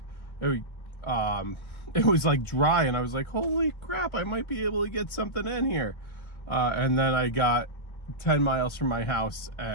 it was like dry, and I was like, holy crap, I might be able to get something in here. And then I got 10 miles from my house,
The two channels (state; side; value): late; right; 1.3 ms